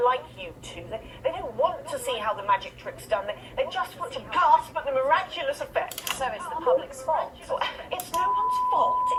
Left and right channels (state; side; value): identical; both; correlation 1.00